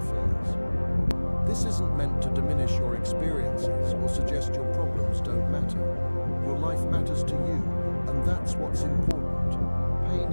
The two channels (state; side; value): inverted; both; correlation -1.00